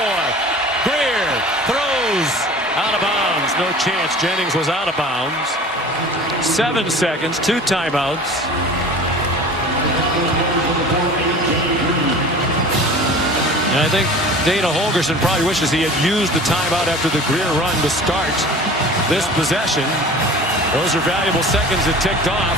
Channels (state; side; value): normal; both; correlation 0.41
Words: Grier throws out of bounds. No chance. Jennings was out of bounds. 7 seconds, 2 timeouts. And I think Dana Holgorsen probably wishes he had used the timeout after the Grier run to start this possession. Those are valuable seconds that ticked off.